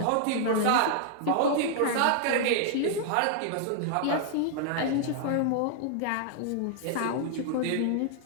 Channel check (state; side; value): different; both; correlation 0.00